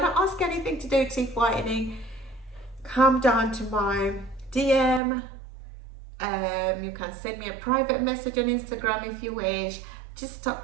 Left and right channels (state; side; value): drops out; left; at 5.0 s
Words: to ask anything to do with teeth whitening, come down to my DM. You can send me a private message on Instagram if you wish. Just